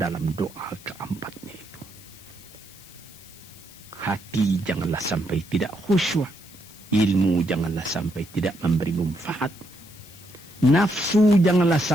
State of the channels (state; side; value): noise; left; hiss, 21 dB below the sound